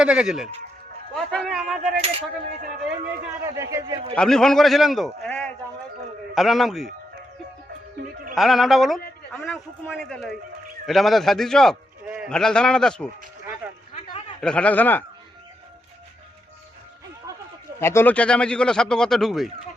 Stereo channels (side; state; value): both; normal; correlation 0.82